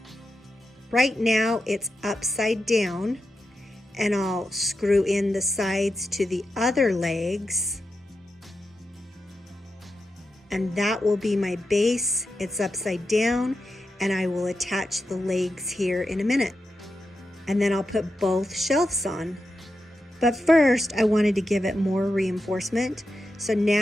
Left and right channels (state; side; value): normal; both; correlation 0.88